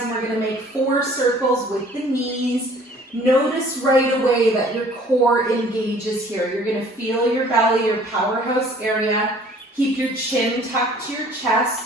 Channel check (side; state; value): both; normal; correlation 0.54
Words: and we're going to make 4 circles with the knees. Notice right away that your core engages here. You're going to feel your belly, your powerhouse area. Keep your chin tucked to your